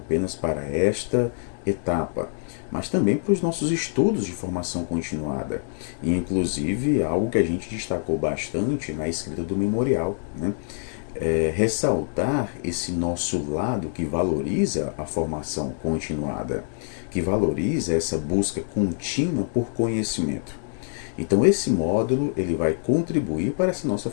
para esta etapa, mas também para os nossos estudos de formação continuada. E inclusive algo que a gente destacou bastante na escrita do memorial, né? Ressaltar esse nosso lado que valoriza a formação continuada, que valoriza essa busca contínua por conhecimento. Então esse módulo ele vai contribuir para essa nossa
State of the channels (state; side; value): silent; right; digital silence